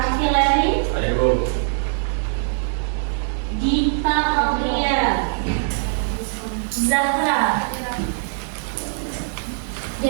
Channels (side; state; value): left; silent; digital silence